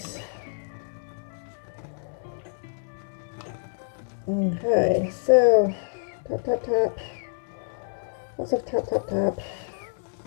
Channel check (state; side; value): silent; right; digital silence